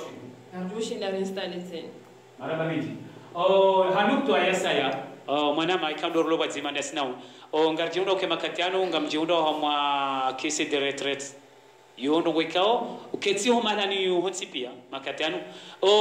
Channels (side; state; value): both; identical; correlation 1.00